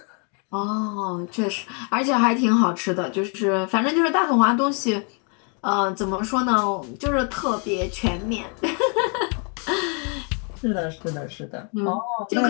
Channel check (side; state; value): right; quieter; 38.5 dB